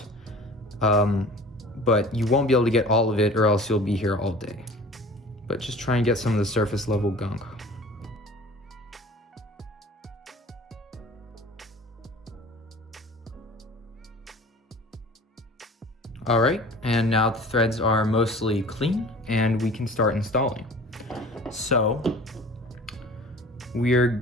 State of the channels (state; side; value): normal; both; correlation 0.43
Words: But you won't be able to get all of it or else you'll be here all day. But just try and get some of the surface level gunk. All right, and now the threads are mostly clean and we can start installing. So we're